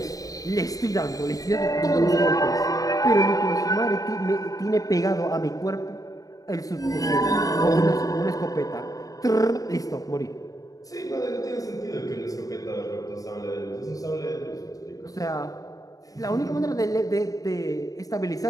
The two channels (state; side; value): late; right; 0.17 ms